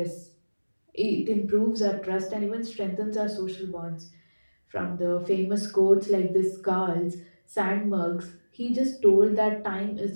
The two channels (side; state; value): both; inverted; correlation -1.00